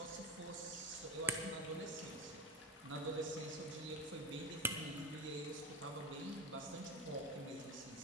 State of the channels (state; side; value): normal; both; correlation 0.26